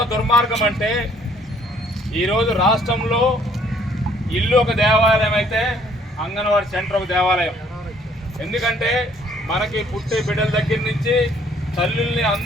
దుర్మార్గం అంటే, ఈరోజు రాష్ట్రంలో ఇల్లు ఒక దేవాలయం అయితే అంగన్వాడీ సెంటర్ ఒక దేవాలయం. ఎందుకంటే మనకి పుట్టే బిడ్డల దగ్గర నుంచి తల్లుల్ని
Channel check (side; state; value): both; normal; correlation 0.61